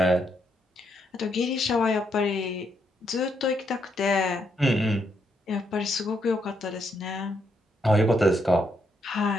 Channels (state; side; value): normal; both; correlation 0.77